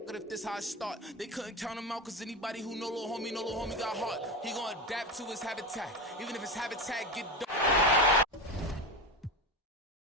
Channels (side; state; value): both; normal; correlation 0.20